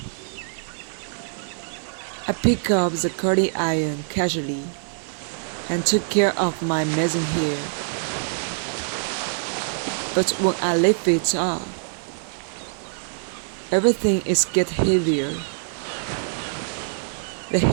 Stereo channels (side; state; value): left; silent; 55 dB below the other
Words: I picked up the curling iron casually and took care of my messy hair. But when I lift it up, everything is getting heavier. The